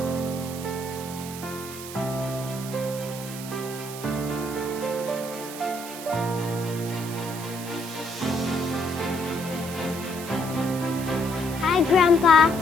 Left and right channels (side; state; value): right; noise; hiss, 11 dB below the sound